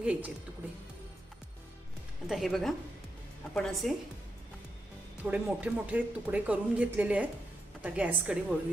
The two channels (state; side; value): normal; both; correlation 0.84